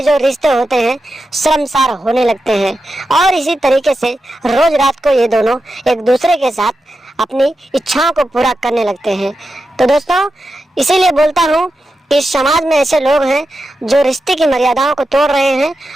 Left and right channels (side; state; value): both; normal; correlation 0.89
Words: जो रिश्ते होते हैं शर्मसार होने लगते हैं और इसी तरीके से रोज रात को ये दोनों एक दूसरे के साथ अपनी इच्छाओं को पूरा करने लगते हैं। तो दोस्तों, इसीलिए बोलता हूँ इस समाज में ऐसे लोग हैं जो रिश्ते की मर्यादाओं को तोड़ रहे हैं